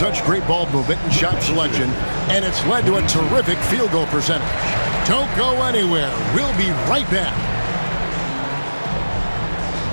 great ball movement and shot selection, and it's led to a terrific field goal percentage. Don't go anywhere. We'll be right back.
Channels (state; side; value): inverted; both; correlation -1.00